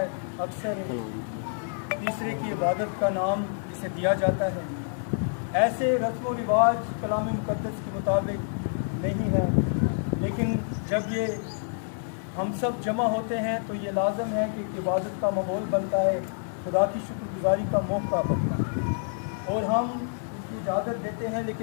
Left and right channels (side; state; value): right; silent; digital silence